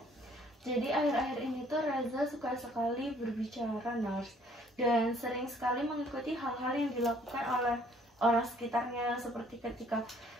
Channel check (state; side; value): normal; both; correlation 0.60